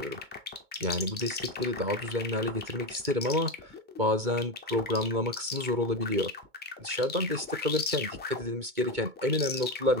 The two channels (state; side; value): late; left; 2.2 ms